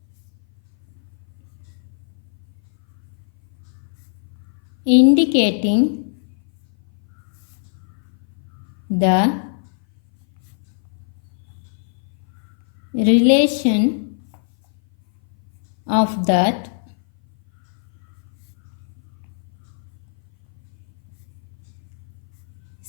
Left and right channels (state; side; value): silent; right; 57 dB below the other